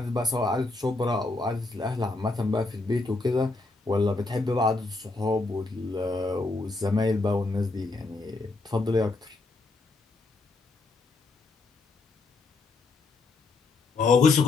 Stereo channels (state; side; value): quieter; right; 3.5 dB